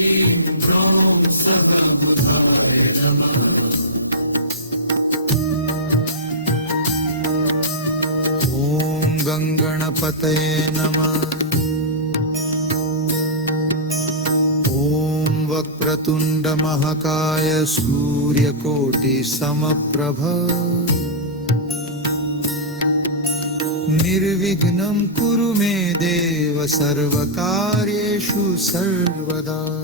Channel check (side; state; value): both; normal; correlation -0.15